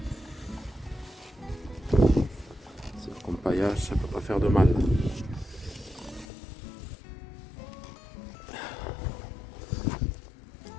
C'est comme paillage, ça peut pas faire de mal.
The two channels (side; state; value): right; drops out; at 6.2 s